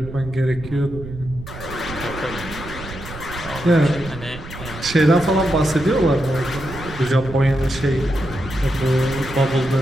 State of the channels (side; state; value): right; noise; rumble, 13 dB below the sound